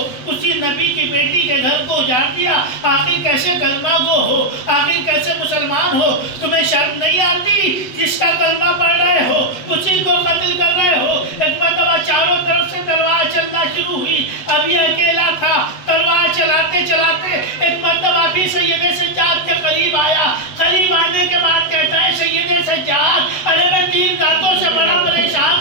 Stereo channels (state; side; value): late; right; 8.0 ms